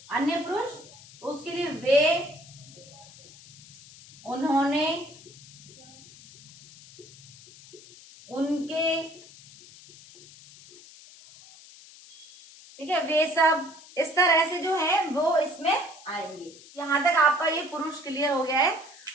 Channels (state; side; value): noise; left; hiss, 20 dB below the sound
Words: अन्य पुरुष। तो उसके लिए वे, उन्होंने, उनके, ठीक है, वे सब, इस तरह से जो है वो इसमें आएंगे। यहां तक आपका ये पुरुष क्लियर हो गया है।